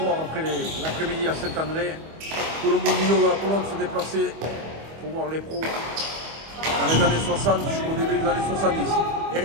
après l'après-midi à Saint-André. Tout le monde milieu de la pelote se déplaçait pour voir les pros dans les années 60 jusqu'au début des années 70. Et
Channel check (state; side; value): late; left; 25 ms